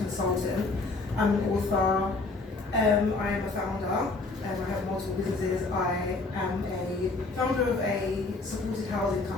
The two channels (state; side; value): quieter; right; 3.5 dB